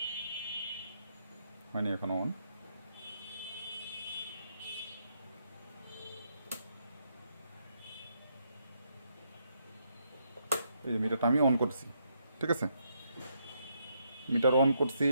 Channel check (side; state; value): both; inverted; correlation -0.76